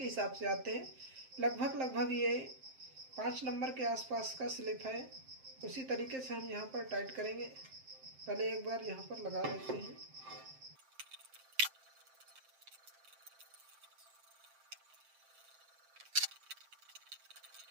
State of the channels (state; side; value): late; left; 7.6 ms